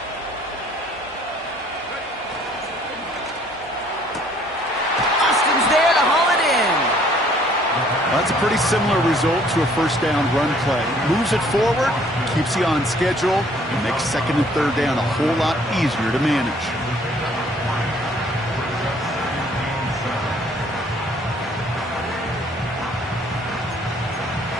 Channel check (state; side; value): normal; both; correlation 0.60